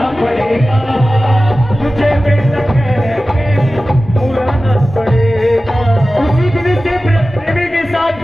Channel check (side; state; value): both; normal; correlation 0.95